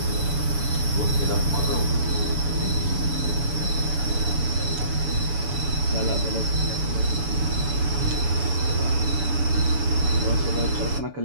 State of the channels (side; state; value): left; late; 7.0 ms